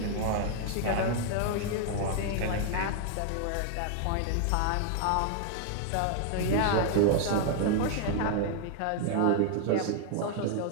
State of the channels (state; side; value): different; both; correlation 0.00